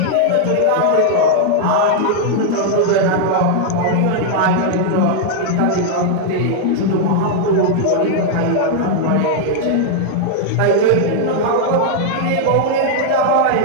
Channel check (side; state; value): both; different; correlation 0.00